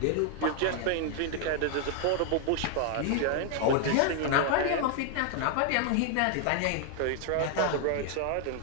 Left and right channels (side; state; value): both; different; correlation 0.00